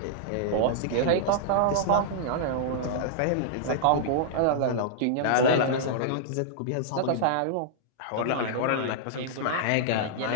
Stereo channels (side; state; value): both; different; correlation -0.02